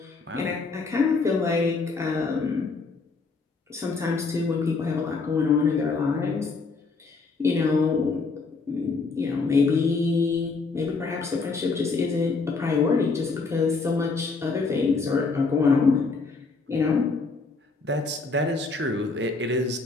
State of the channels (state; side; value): quieter; right; 4.2 dB